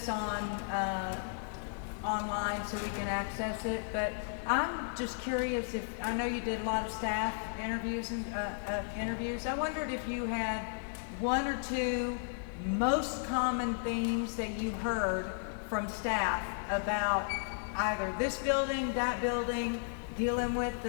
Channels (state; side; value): silent; right; 55 dB below the other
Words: on, online so we can access it, but I'm just curious if, I know you did a lot of staff interviews and, interviews. I wondered if you had one or two most common themes that you heard from staff about either this building, that building, dealing with